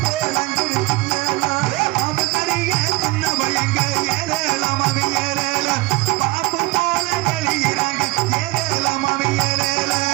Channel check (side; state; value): left; quieter; 21.4 dB